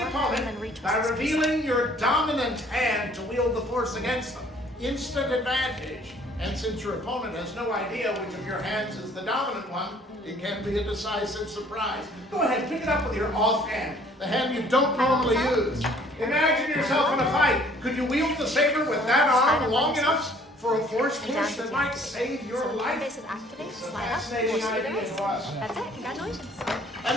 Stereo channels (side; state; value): both; normal; correlation 0.57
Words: opponent by revealing your dominant hand to wield the force against them. Instant advantage. And since your opponent has no idea which of your hands is the dominant one, it can be a decisive surprise. Go ahead, pick it up with your offhand, the hand you don't normally use. Imagine yourself in a fight. Could you wield the saber with that arm long enough for a force push that might save your life? This is activate, It's a slide up, fascinating force idea reverse. to us. That's it, congratulations. And